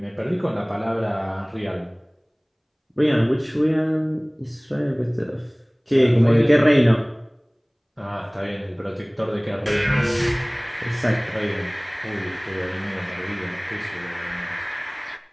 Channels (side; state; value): both; identical; correlation 1.00